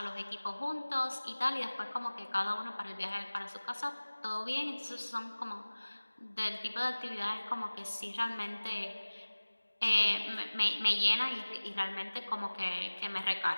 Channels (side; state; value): both; inverted; correlation -1.00